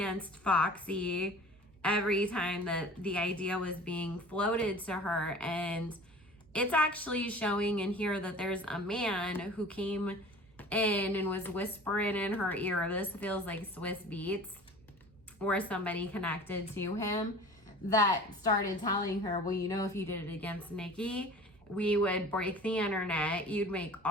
Foxy every time that the idea was being floated to her. And it's actually showing in here that there's a man who came in and was whispering in her ear. This feels like Swiss Beats or somebody connected to him that started telling her, well, you know, if you did it against Nicki, we would break the internet. You'd make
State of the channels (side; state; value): right; noise; hum, 29 dB below the sound